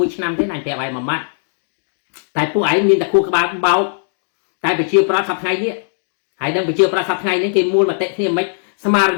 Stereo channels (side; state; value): right; silent; digital silence